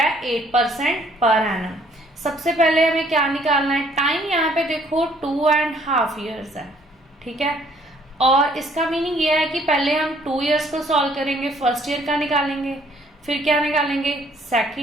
है 8% पर एनम। सबसे पहले हमें क्या निकालना है टाइम, यहाँ पे देखो 2.5 ईयर्स है, ठीक है। और इसका मीनिंग ये है कि पहले हम 2 ईयर्स को सॉल्व करेंगे, फर्स्ट ईयर का निकालेंगे, फिर क्या निकालेंगे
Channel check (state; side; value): normal; both; correlation 0.62